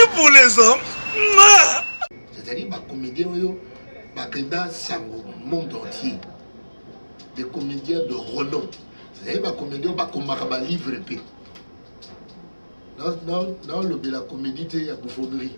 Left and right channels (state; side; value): inverted; both; correlation -1.00